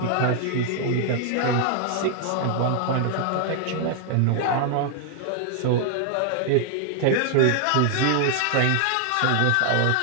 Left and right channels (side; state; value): both; different; correlation 0.00